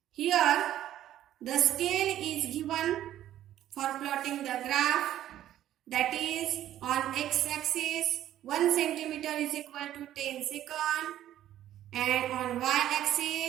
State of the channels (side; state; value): left; quieter; 12.3 dB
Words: Here, the scale is given for plotting the graph, that is on x-axis 1 centimeter is equal to 10 seconds and on